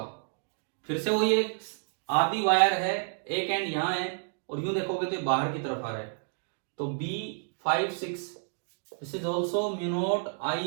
फिर से वही एक आधी वायर है, एक एंड यहां है और यूं देखोगे तो बाहर की तरफ आ रहा है, तो B56 this is also mu naught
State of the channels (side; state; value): left; silent; 58 dB below the other